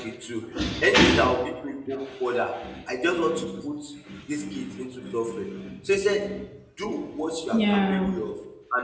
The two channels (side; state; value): both; identical; correlation 1.00